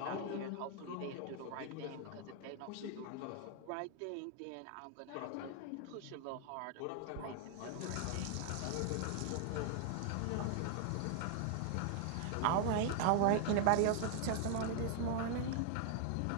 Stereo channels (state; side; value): different; both; correlation 0.00